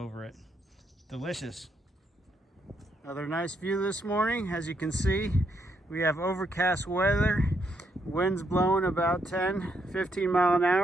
it. Delicious. Another nice view this morning. As you can see, we have overcast weather. Wind's blowing about 10-15 mile an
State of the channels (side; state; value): both; normal; correlation 0.77